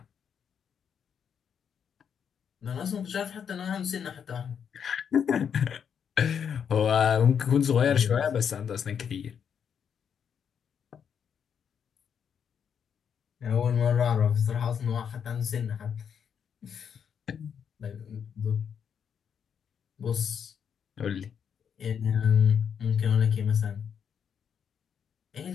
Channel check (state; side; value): quieter; right; 7.6 dB